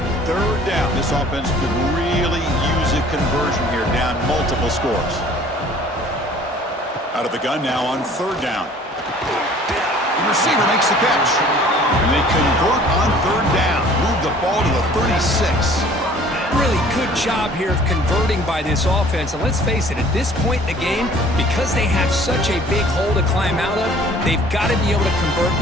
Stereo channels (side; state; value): both; normal; correlation 0.52